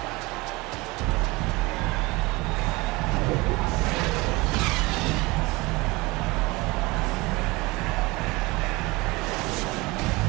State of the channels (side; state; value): left; quieter; 23.3 dB